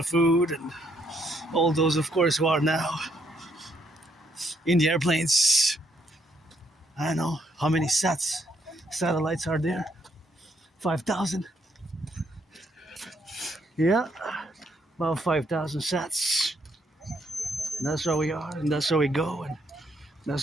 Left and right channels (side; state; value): both; normal; correlation 0.72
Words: food, and all those, of course, who are now in the airplanes. I don't know how many satellites are there. 5,000. Yeah, about 5,000 sats. And that's how we are, and that's how we go, and